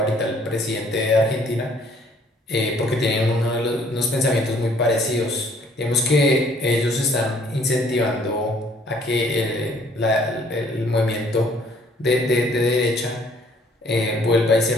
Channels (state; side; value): normal; both; correlation 0.61